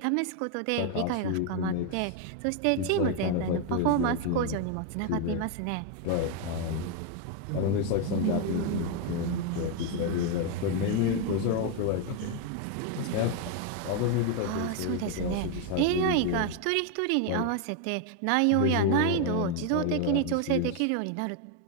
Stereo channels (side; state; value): both; different; correlation 0.01